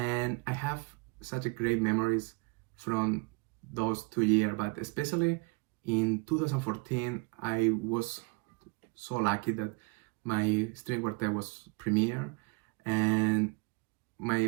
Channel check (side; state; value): left; quieter; 29.6 dB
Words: I have such a great memories from those 2 years, but especially in 2014, I was so lucky that my string quartet was premiere, and